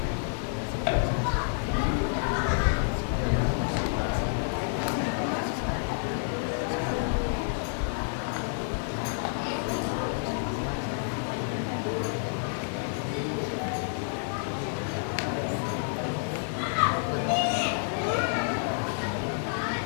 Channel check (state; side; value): silent; right; 58 dB below the other